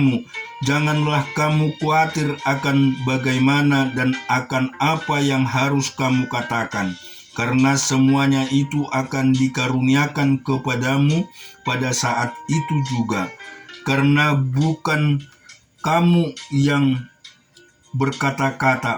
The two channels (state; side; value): identical; both; correlation 1.00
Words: janganlah kamu khawatir akan bagaimana dan akan apa yang harus kamu katakan, karena semuanya itu akan dikaruniakan kepadamu pada saat itu juga. Karena bukan kamu yang